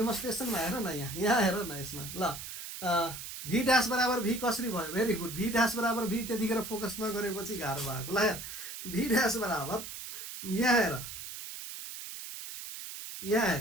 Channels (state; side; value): noise; right; hiss, 9 dB below the sound